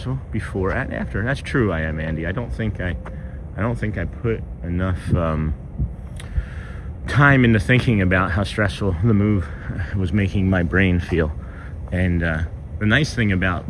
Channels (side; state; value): both; identical; correlation 1.00